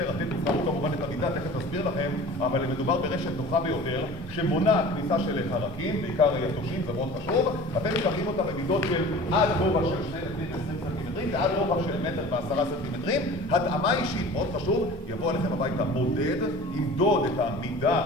אתם תבחרו כמובן את המידה, תכף נסביר לכם, אבל מדובר ברשת נוחה ביותר שמונעת כניסה של חרקים, בעיקר יתושים, זה מאוד חשוב. אתם מקבלים אותה במידות של עד גובה של 2 מטרים ו-20 סנטימטרים ועד רוחב של 1 מטר ו10 סנטימטרים. התאמה אישית, מאוד חשוב, יבוא עליכם הביתה מודד, ימדוד את המידה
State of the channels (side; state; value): both; normal; correlation 0.41